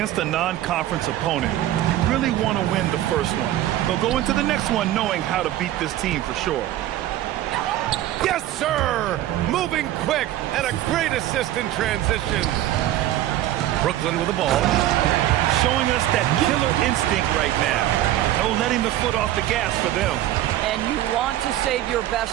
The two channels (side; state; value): left; quieter; 13.6 dB